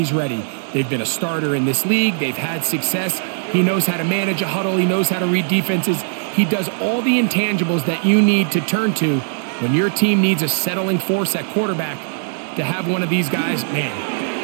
ready. They've been a starter in this league. They've had success. He knows how to manage a huddle. He knows how to read defenses. He does all the intangibles that you need to turn to when your team needs a settling force at quarterback. To have one of these guys, man,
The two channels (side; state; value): left; silent; digital silence